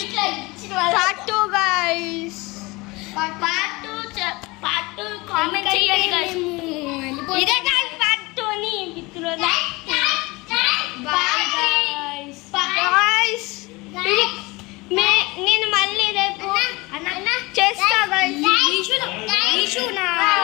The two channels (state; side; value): quieter; right; 23.6 dB